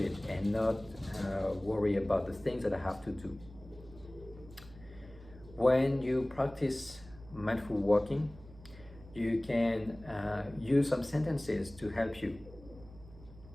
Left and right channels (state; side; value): noise; right; hum, 19 dB below the sound